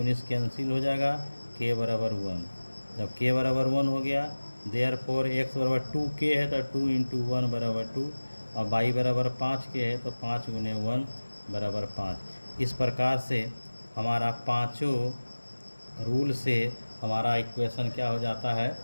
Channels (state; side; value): inverted; both; correlation -1.00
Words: कैंसिल हो जाएगा, k बराबर 1। जब k बराबर 1 हो गया, देयरफॉर x बराबर 2k है तो 2 इंटू 1 बराबर 2 और y बराबर 5k है तो 5 गुने 1 बराबर 5। इस प्रकार से हमारा पांचों रूल से हमारा इक्वेशन क्या हो जाता है,